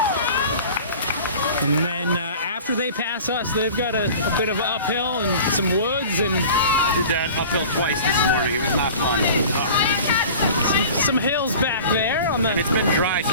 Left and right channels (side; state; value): both; inverted; correlation -0.41